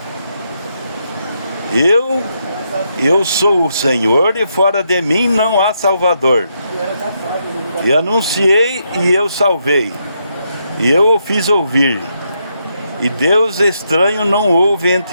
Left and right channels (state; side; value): inverted; both; correlation -0.79